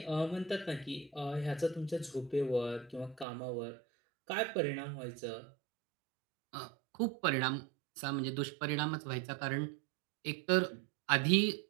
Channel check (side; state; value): left; drops out; at 3.2 s